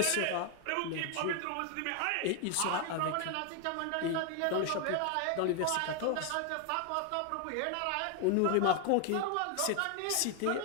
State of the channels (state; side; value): different; both; correlation 0.01